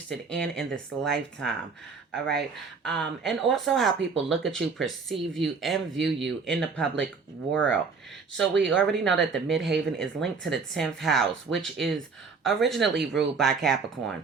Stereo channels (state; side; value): quieter; left; 5.0 dB